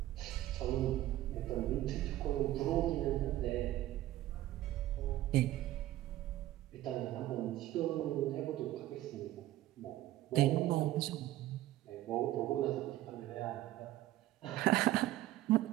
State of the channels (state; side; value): quieter; left; 14.8 dB